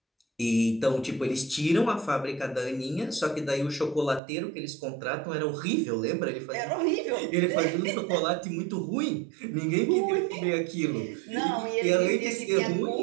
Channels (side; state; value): left; drops out; at 4.2 s